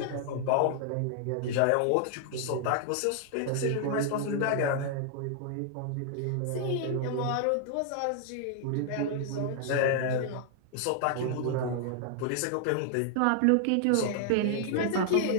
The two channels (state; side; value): different; both; correlation 0.00